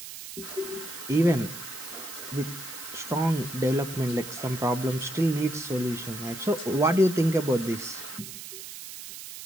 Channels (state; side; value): noise; right; hiss, 11 dB below the sound